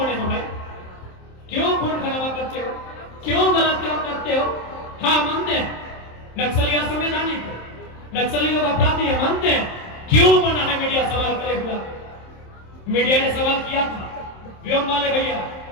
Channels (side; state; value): right; late; 27 ms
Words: हो भाई? क्यों खून खराबा करते हो? क्यों गलत काम करते हो? हाँ, मानते हैं नक्सली असंवैधानिक है, नक्सली लोग अपराधी है, मानते हैं। क्यों मना है मीडिया सवाल करे हुआ? मीडिया ने सवाल किया था, व्योम वाले भैया,